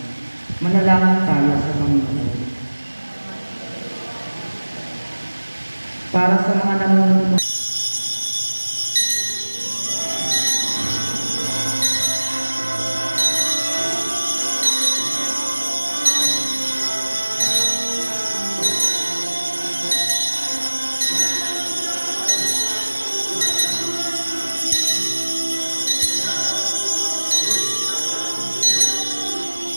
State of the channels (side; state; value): both; inverted; correlation -1.00